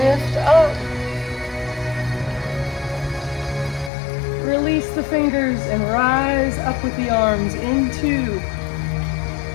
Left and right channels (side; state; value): right; drops out; at 3.9 s